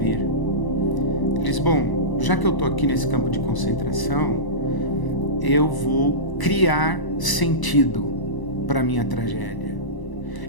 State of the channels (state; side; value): late; right; 1.0 ms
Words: Ele diz: bom, já que eu estou aqui nesse campo de concentração, eu vou criar sentido para a minha tragédia.